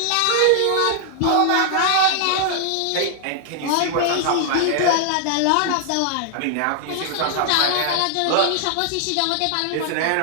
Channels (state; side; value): different; both; correlation 0.00